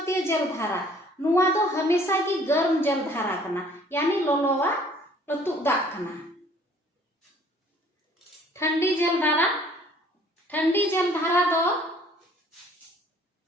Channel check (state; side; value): normal; both; correlation 0.56